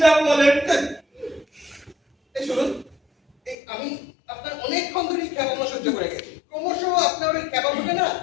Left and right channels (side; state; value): right; drops out; at 3.6 s